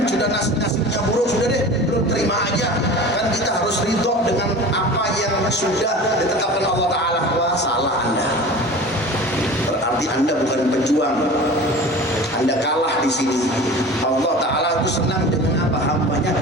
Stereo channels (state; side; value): normal; both; correlation 0.37